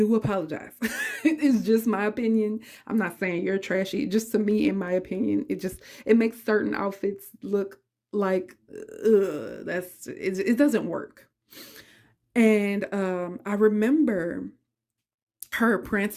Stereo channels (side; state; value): both; identical; correlation 1.00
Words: apologize. It's just my opinion. I'm not saying you're trashy. Just to me, in my opinion, it makes certain outfits look like it doesn't work. And I remember her